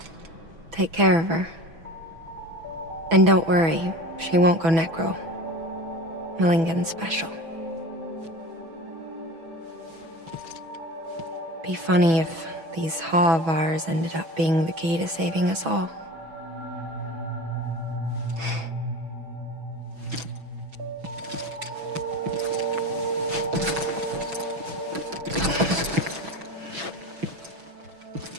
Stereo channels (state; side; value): late; left; 6.1 ms